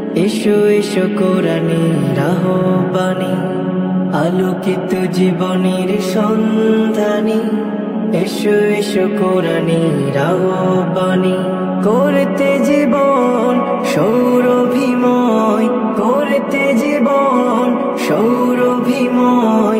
এসো এসো কোরআনের আহ্বানে, আলোকিত জীবনের সন্ধানে এসো এসো কোরআনের আহ্বানে। করতে জীবন সৌরভিময়, করতে জীবন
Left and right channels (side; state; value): both; identical; correlation 1.00